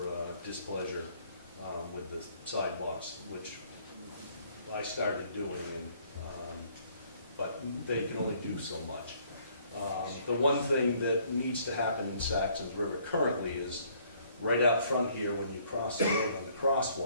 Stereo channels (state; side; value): inverted; both; correlation -0.63